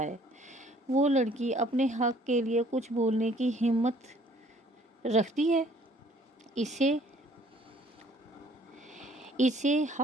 وہ لڑکی اپنے حق کے لیے کچھ بولنے کی ہمت رکھتی ہے؟ اسے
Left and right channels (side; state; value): both; normal; correlation 0.58